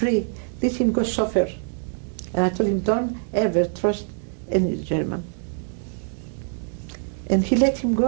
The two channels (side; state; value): left; silent; digital silence